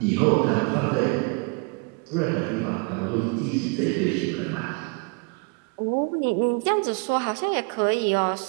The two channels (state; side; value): quieter; left; 30.8 dB